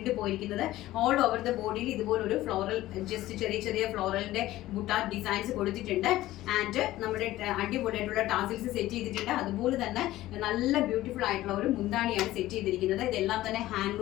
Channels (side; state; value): right; quieter; 15.8 dB